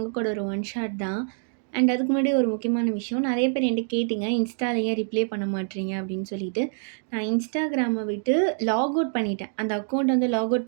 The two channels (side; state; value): left; silent; digital silence